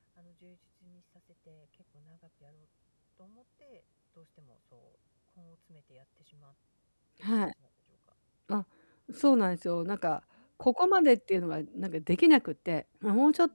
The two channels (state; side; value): inverted; both; correlation -1.00